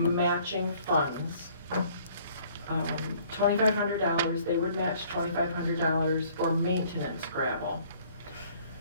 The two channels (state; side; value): inverted; both; correlation -0.58